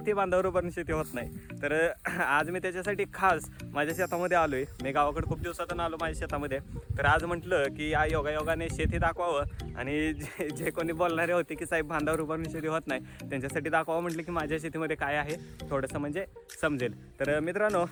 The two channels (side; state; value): both; identical; correlation 1.00